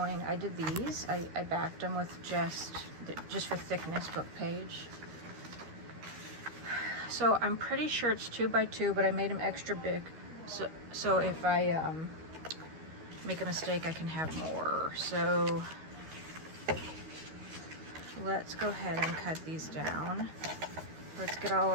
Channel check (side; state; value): left; late; 13 ms